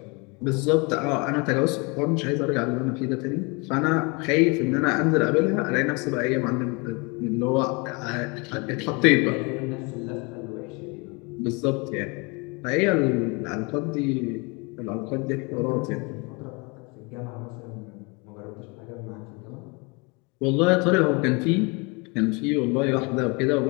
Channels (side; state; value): right; quieter; 29.6 dB